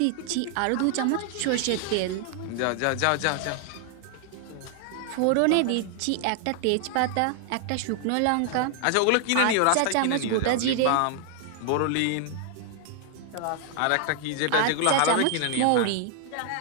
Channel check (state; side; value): different; both; correlation 0.00